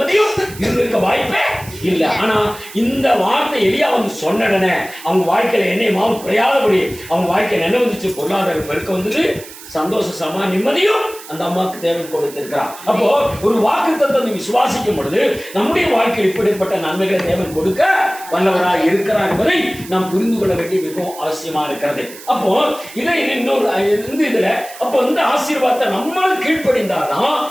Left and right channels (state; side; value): noise; right; hiss, 16 dB below the sound